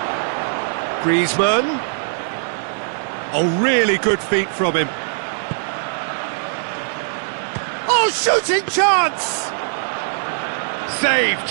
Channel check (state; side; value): silent; left; digital silence